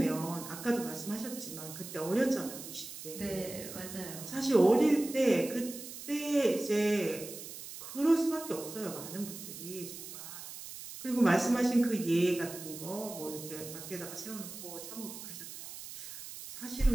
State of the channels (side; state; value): right; noise; hiss, 11 dB below the sound